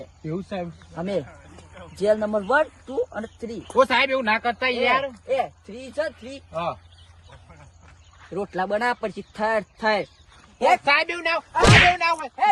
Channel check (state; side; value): identical; both; correlation 1.00